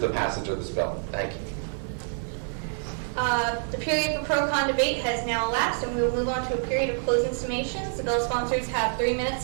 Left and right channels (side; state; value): left; silent; 60 dB below the other